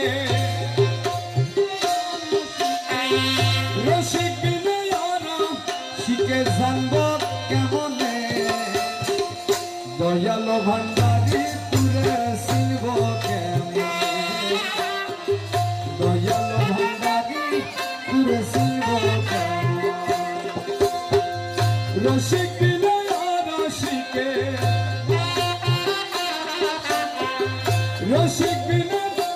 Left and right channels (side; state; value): both; identical; correlation 1.00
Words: রসিক বিনয় রসিকে জানব কেমনে, দয়ালো ভান্ডারি তুলে শিব কেমনে, দয়ালো ভান্ডারি তুলে শিব কেমনে, রসিক বিনয় রসিকে, রসিক বিনয়